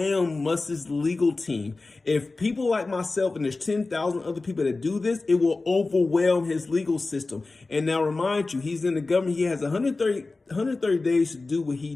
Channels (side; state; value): right; quieter; 3.5 dB